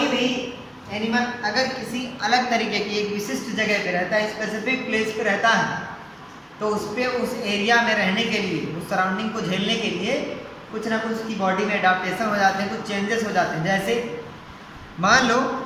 भी एनिमल अगर किसी अलग तरीके की एक विशिष्ट जगह पे रहता है, स्पेसिफिक प्लेस पे रहता है, तो उस पर उस एरिया में रहने के लिए, उस सराउंडिंग को झेलने के लिए कुछ ना कुछ उसकी बॉडी में एडाप्टेशन हो जाते हैं, कुछ चेंजेस हो जाते हैं। जैसे मान लो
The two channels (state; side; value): identical; both; correlation 1.00